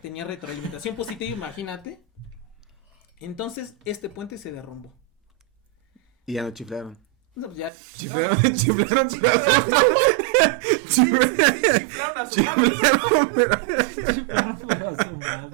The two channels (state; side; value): drops out; left; at 7.7 s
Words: retroalimentación positiva, imagínate. Entonces, este puente se derrumbó. Y ya no chiflaron. No, pues ya Chiflaron a su madre.